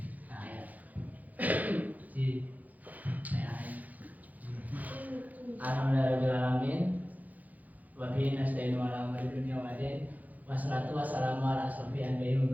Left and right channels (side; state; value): left; late; 0.079 ms